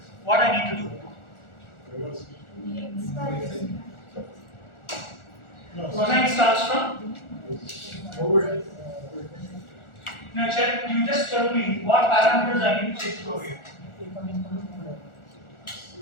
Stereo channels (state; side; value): late; right; 1.4 ms